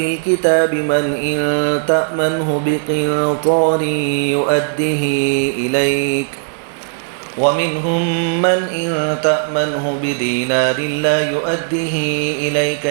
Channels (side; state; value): left; silent; digital silence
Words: الكتاب من إن تأمنه بقنطار يؤده إليك ومنهم من إن تأمنه بدينار لا يؤده إليك